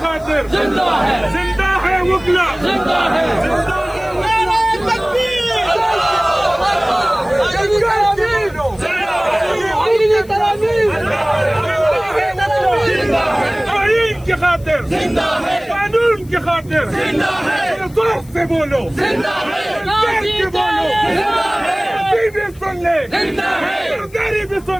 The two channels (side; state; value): left; noise; hiss, 26 dB below the sound